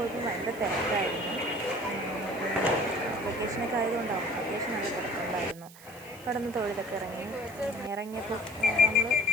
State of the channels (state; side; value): noise; right; hiss, 20 dB below the sound